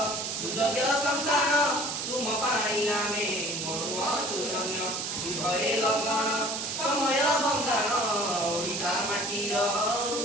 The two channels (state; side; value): noise; right; hiss, 3 dB below the sound